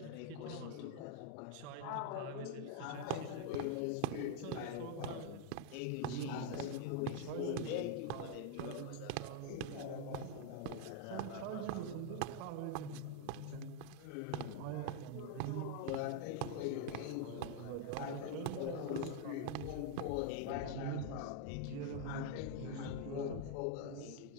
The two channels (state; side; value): different; both; correlation 0.00